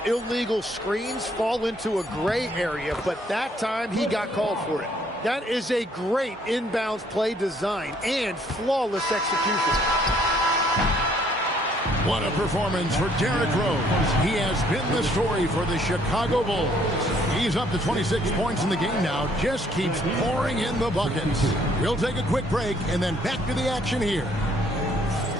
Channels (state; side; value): normal; both; correlation 0.64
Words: illegal screens fall into a gray area, but that time he got called for it. That is a great inbounds play design and flawless execution. What a performance for Derrick Rose. He has been the story for the Chicago Bulls. He's up to 26 points in the game now, just keeps pouring in the buckets. We'll take a quick break and then back to the action here.